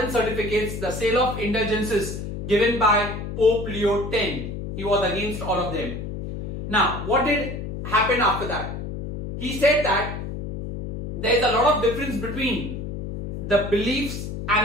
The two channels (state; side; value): noise; left; hum, 7 dB below the sound